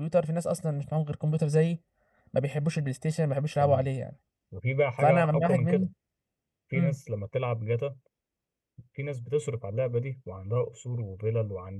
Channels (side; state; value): both; identical; correlation 1.00